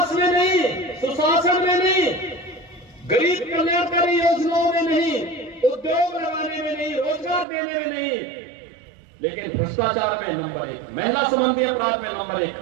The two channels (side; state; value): left; drops out; at 7.5 s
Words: में नहीं, सुशासन में नहीं, गरीब कल्याणकारी योजनाओं में नहीं, उद्योग लगाने में नहीं, रोजगार देने में नहीं, लेकिन भ्रष्टाचार में नंबर 1, महिला संबंधी अपराध में नंबर 1,